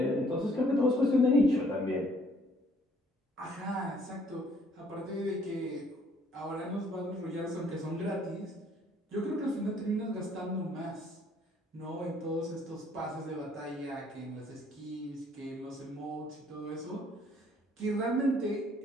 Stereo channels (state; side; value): normal; both; correlation 0.62